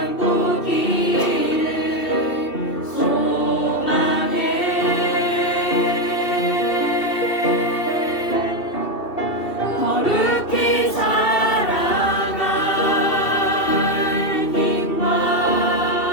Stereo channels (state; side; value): late; right; 2.7 ms